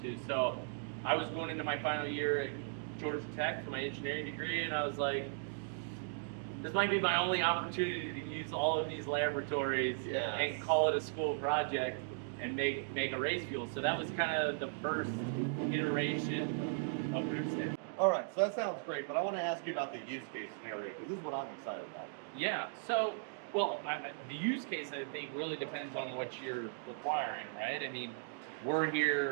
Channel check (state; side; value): silent; left; digital silence